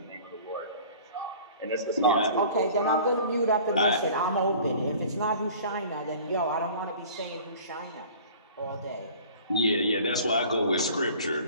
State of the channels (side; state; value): both; inverted; correlation -0.46